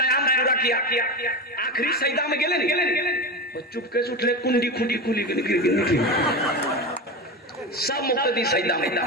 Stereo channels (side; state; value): both; normal; correlation 0.21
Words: पूरा किया, आखिरी सजदा में गेले नहीं, चुपके से उठले, कुंडी खुंडी खुली सब मुक्तदी सजदा में।